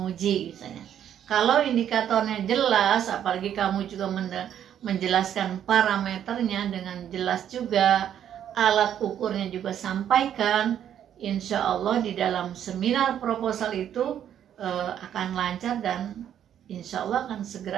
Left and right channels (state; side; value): quieter; left; 9.9 dB